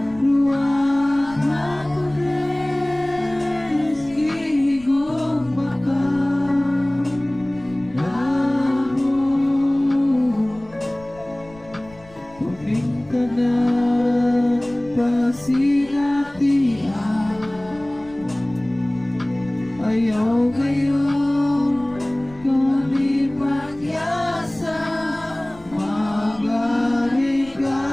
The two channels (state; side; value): noise; left; rumble, 23 dB below the sound